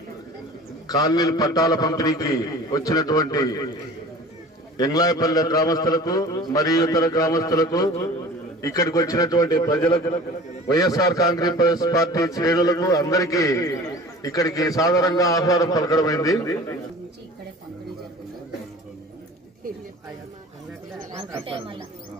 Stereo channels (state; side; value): normal; both; correlation 0.42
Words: కాలనీల పట్టాల పంపిణీకి వచ్చినటువంటి ఎంగ్లాయపల్లె గ్రామస్తులకు మరియు ఇతర గ్రామస్తులకు, ఇక్కడికి వచ్చినటువంటి ప్రజలకు, వైఎస్ఆర్ కాంగ్రెస్ పార్టీ శ్రేణులకు అందరికీ ఇక్కడికి సాధారణంగా ఆహ్వానం పలకడమైంది.